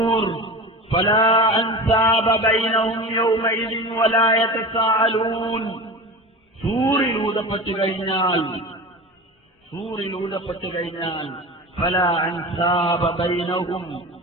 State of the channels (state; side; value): normal; both; correlation 0.31